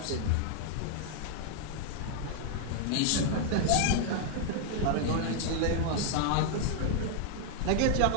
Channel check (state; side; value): different; both; correlation 0.00